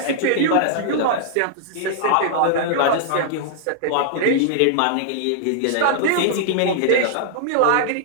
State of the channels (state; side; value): different; both; correlation -0.01